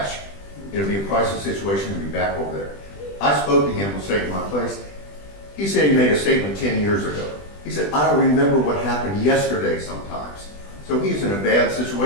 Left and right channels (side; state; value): right; late; 20 ms